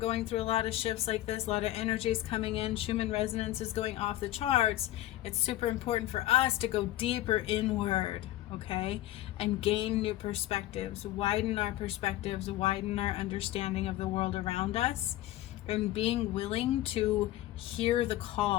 through a lot of shifts like this, a lot of energies coming in, Schumann resonance is going off the charts, it's super important for us to go deeper inward, okay? And gain new perspectives, widen our perspectives, widen our understanding of the world around us, and being willing to hear the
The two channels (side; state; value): right; quieter; 14.8 dB